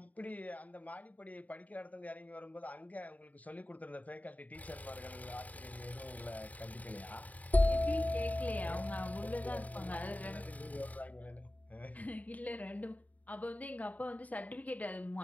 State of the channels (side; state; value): right; late; 0.073 ms